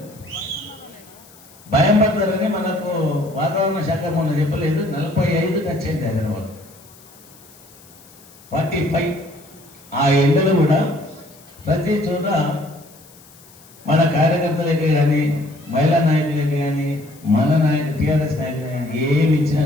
భయం పడతారని మనకు వాతావరణ శాఖ మొన్న చెప్పలేదు. 45 టచ్ అయింది హైదరాబాద్. 45 ఆ ఎండలు కూడా ప్రతి చోట మన కార్యకర్తలకి కానీ మహిళా నాయకులకి కానీ మన నాయకులు టీఆర్ఎస్ నాయకులు కానీ ఏమి ఇచ్చినా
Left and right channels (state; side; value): noise; left; hiss, 24 dB below the sound